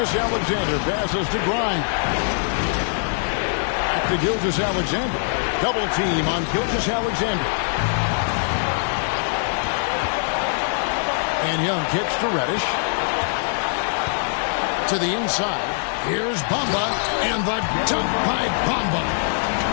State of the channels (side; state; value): right; silent; digital silence